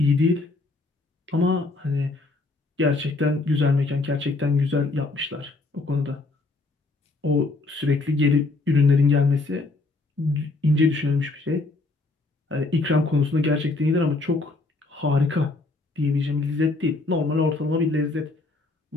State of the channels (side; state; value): right; quieter; 3.3 dB